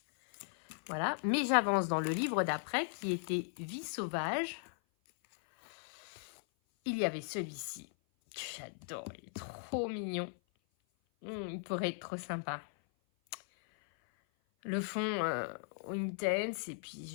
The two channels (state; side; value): silent; right; 53 dB below the other